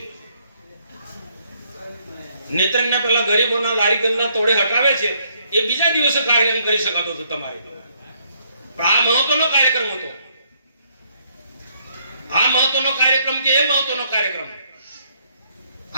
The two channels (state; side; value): inverted; both; correlation -0.70